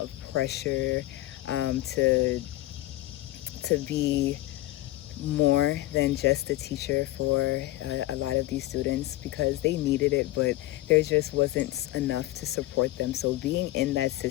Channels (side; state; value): right; quieter; 16.9 dB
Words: of pressure to be more than just a teacher for a lot of these students, because they needed it, but there just wasn't enough to support them. So being in that